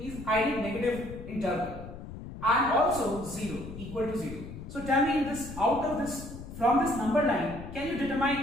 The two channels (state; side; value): noise; left; rumble, 11 dB below the sound